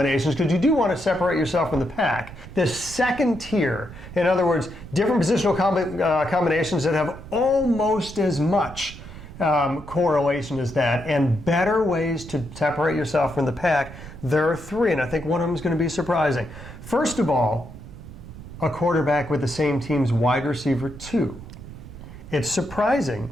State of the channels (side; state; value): right; noise; rumble, 15 dB below the sound